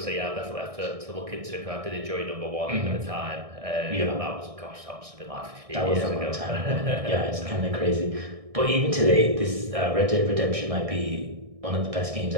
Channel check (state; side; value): late; left; 1.6 ms